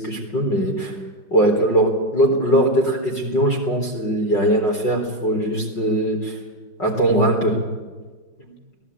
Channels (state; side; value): late; right; 5.5 ms